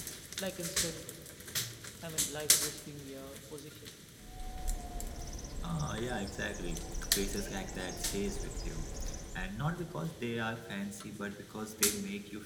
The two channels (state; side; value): identical; both; correlation 1.00